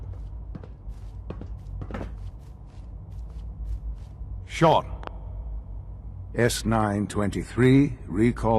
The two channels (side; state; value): both; identical; correlation 1.00